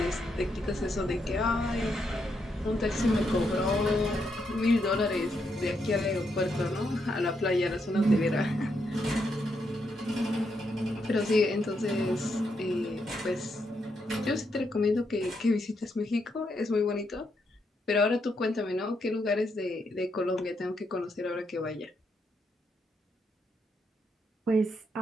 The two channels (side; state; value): both; normal; correlation 0.80